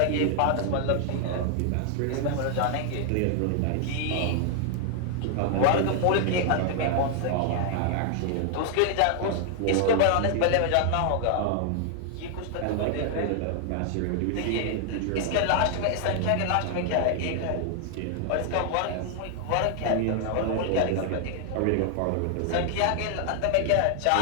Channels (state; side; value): different; both; correlation 0.00